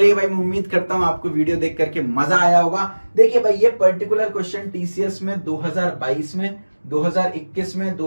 भाई, मैं उम्मीद करता हूं आपको वीडियो देख करके मजा आया होगा। देखिए भाई, ये पर्टिकुलर क्वेश्चन टीसीएस में 2022 में, 2021 में,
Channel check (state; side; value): inverted; both; correlation -1.00